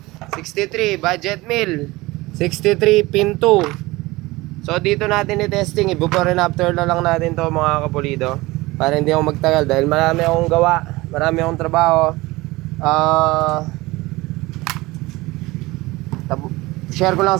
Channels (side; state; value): left; quieter; 20.7 dB